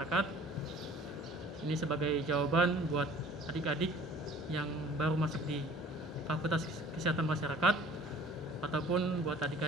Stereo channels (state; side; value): normal; both; correlation 0.49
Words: Ini sebagai jawaban buat adik-adik yang baru masuk di Fakultas Kesehatan Masyarakat ataupun buat